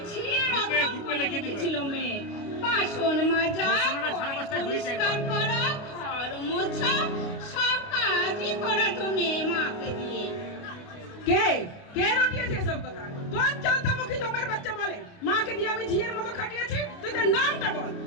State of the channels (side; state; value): right; late; 29 ms